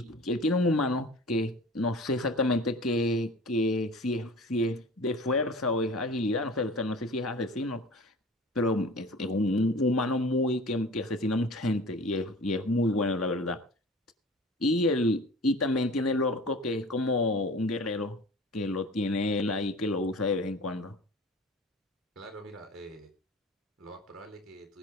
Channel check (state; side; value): normal; both; correlation 0.41